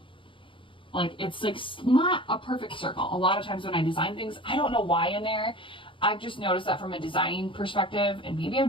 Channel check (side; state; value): right; late; 0.25 ms